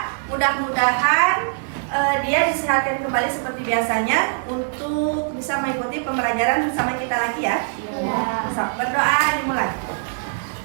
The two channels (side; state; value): left; silent; digital silence